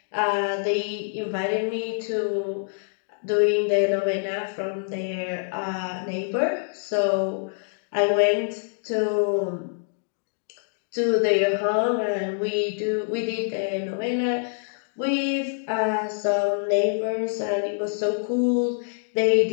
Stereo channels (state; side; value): silent; right; digital silence